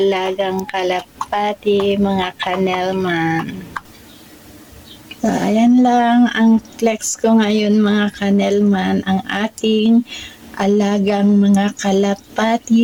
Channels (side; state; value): both; identical; correlation 1.00